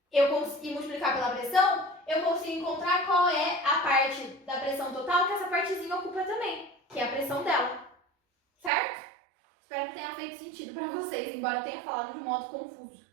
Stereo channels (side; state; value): left; drops out; at 8.7 s